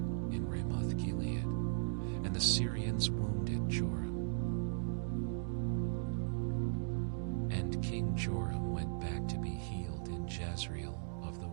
in Ramoth-Gilead, and the Syrians wounded Joram. And King Joram went back to be healed in Jezreel of the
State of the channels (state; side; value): silent; left; digital silence